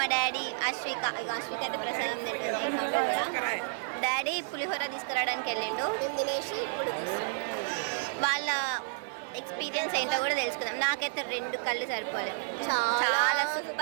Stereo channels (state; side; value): silent; left; digital silence